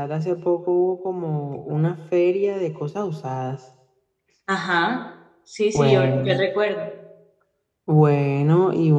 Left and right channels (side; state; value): both; identical; correlation 1.00